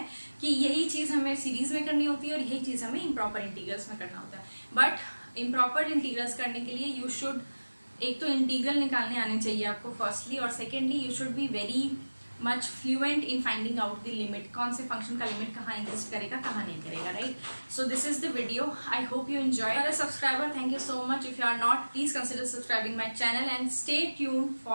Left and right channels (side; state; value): both; inverted; correlation -1.00